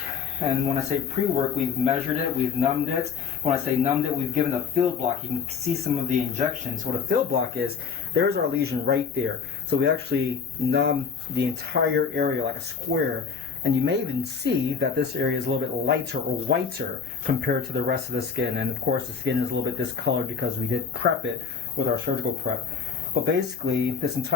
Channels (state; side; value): quieter; right; 6.0 dB